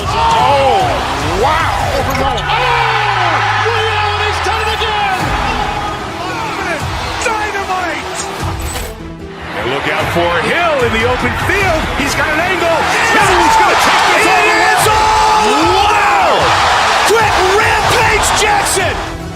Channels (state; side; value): identical; both; correlation 1.00